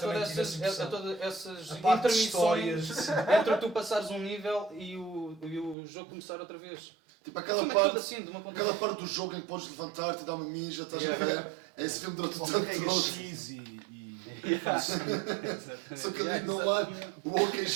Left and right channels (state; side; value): drops out; left; at 5.8 s